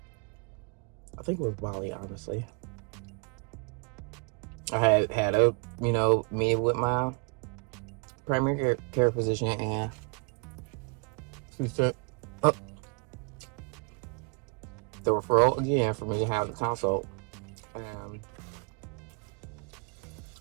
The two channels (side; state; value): left; quieter; 33.5 dB